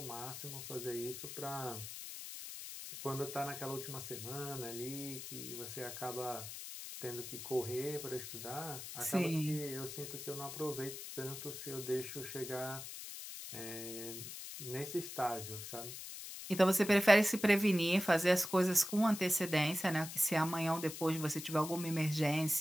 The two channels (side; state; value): left; noise; hiss, 9 dB below the sound